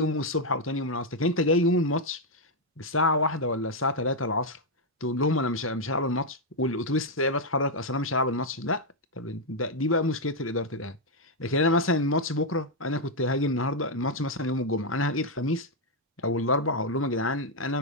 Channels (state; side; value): normal; both; correlation 0.00